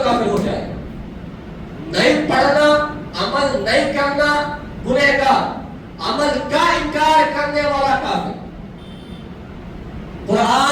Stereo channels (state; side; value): identical; both; correlation 1.00